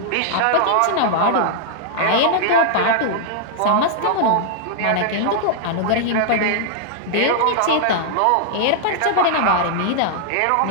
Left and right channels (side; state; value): both; different; correlation -0.01